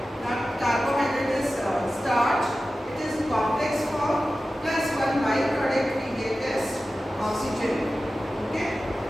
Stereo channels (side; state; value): both; normal; correlation 0.94